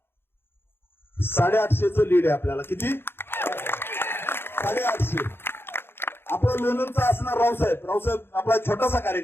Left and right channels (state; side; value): late; right; 0.11 ms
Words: 850चं लीड आहे आपल्याला. किती? 850. आपलं लोणंदचा असणार रावसाहेब आपला छोटासा